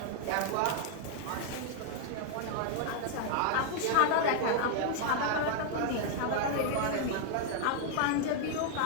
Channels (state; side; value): different; both; correlation 0.00